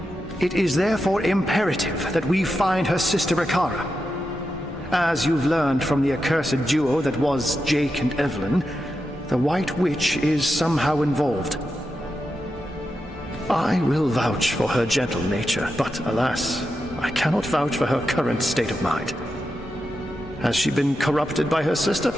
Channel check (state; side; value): normal; both; correlation 0.88